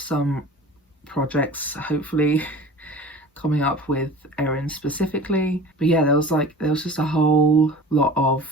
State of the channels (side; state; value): both; normal; correlation 0.40